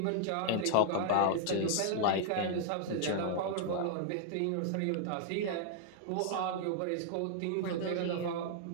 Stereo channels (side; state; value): both; different; correlation 0.00